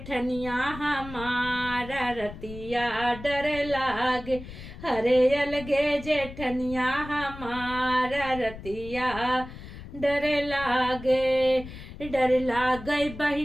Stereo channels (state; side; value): noise; left; rumble, 13 dB below the sound